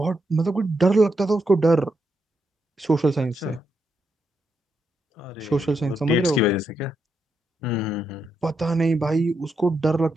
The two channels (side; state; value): both; normal; correlation 0.82